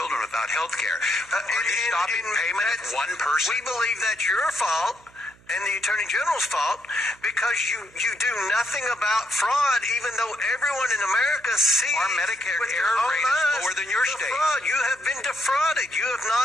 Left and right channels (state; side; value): noise; right; hum, 28 dB below the sound